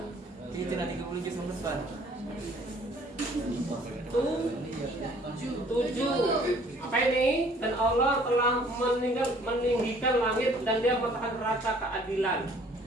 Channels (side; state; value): both; normal; correlation 0.57